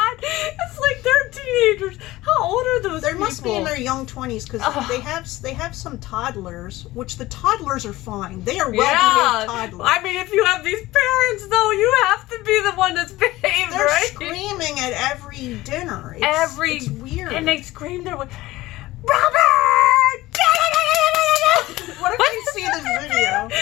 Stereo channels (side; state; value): right; quieter; 17.9 dB